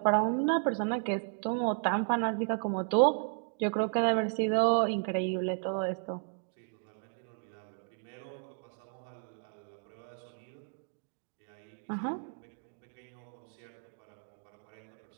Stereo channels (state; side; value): silent; left; 55 dB below the other